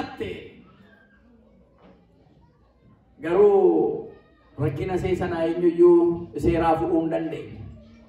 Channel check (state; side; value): identical; both; correlation 1.00